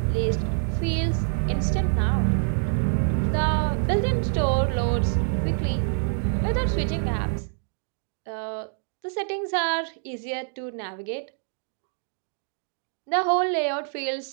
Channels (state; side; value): silent; left; digital silence